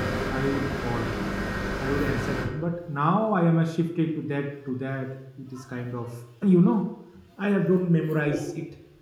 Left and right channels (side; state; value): both; identical; correlation 1.00